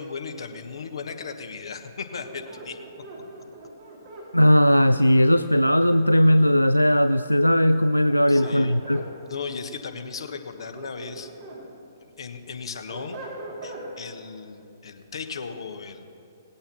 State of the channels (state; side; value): inverted; both; correlation -0.96